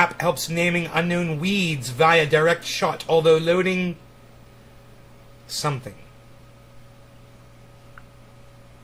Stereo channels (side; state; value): both; identical; correlation 1.00